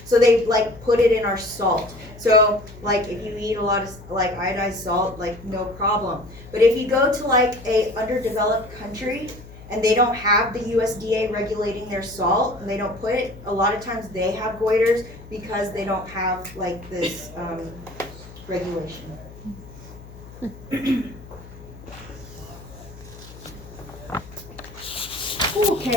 So they like put it in our salt. So like if you eat a lot of like iodized salt, like no problem. But if you go to like a underdeveloped country and they don't have the USDA regulating their salt, and they don't put it, a lot of times they have goiters because they don't have like this regulation.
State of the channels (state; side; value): noise; left; hum, 18 dB below the sound